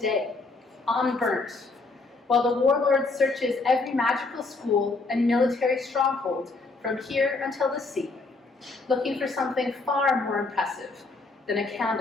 unburnt, while the warlord searches every magical school and military stronghold from here until the sea, looking for something far more impressive than a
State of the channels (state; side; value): quieter; right; 3.6 dB